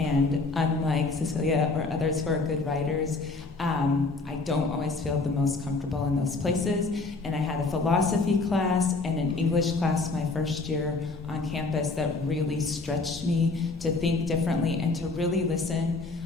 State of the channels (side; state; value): right; quieter; 3.6 dB